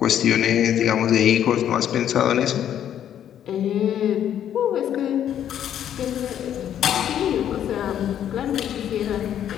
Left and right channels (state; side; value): quieter; right; 10.2 dB